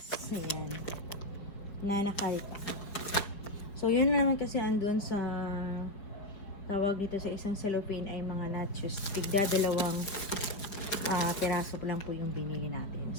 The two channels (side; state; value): right; late; 5.1 ms